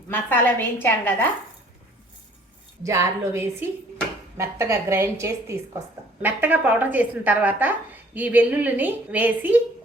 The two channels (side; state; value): both; normal; correlation 0.56